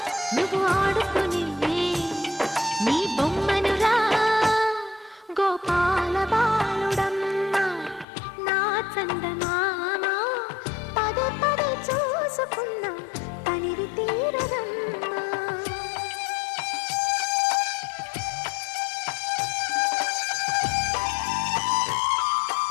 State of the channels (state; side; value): drops out; right; at 8.1 s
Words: నువ్వు ఆడుకుని నీ బొమ్మనురా గోపాల బాలుడమ్మ నా చందమామ పదే పదే చూసుకున్నా తనివి తీరదమ్మా